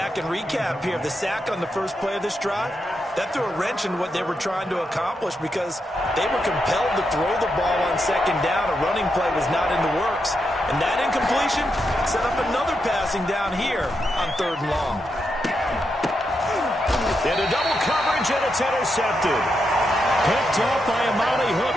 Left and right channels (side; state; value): both; normal; correlation 0.84